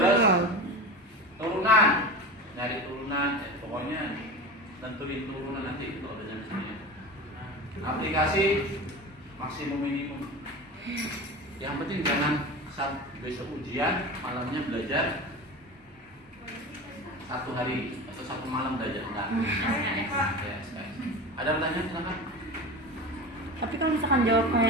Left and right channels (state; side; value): normal; both; correlation 0.29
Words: turunan, nyari turunan, pokoknya tentuin turunan nanti itu ada di sini. Aplikasi maksimum minimum. Yang penting jangan saat besok ujian malamnya belajar 1 hari atau 1 malam belajar enggak. Ya, ada pertanyaan silakan. Tapi kalau misalkan jawab